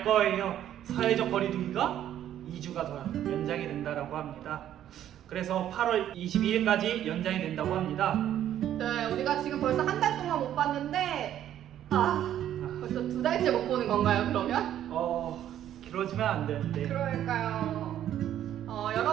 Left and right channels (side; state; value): left; quieter; 11.2 dB